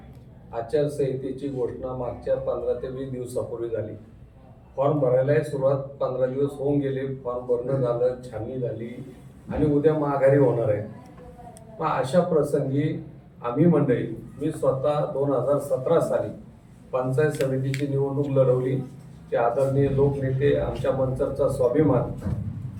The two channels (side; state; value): both; identical; correlation 1.00